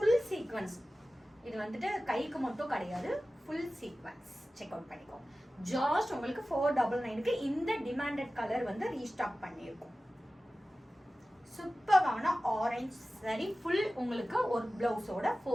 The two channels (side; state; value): both; normal; correlation 0.96